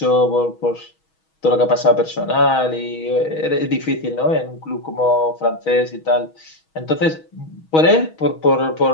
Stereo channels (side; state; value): right; late; 6.3 ms